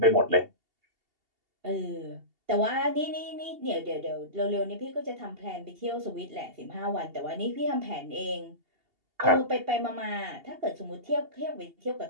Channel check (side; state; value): left; late; 2.8 ms